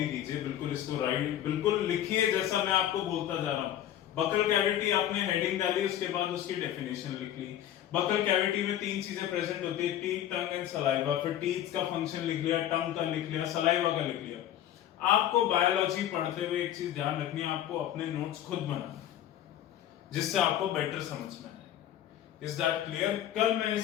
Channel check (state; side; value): quieter; right; 11.5 dB